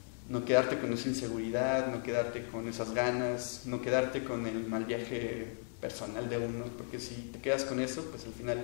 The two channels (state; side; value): silent; right; digital silence